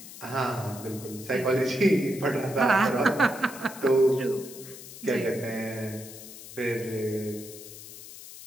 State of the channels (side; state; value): left; noise; hiss, 15 dB below the sound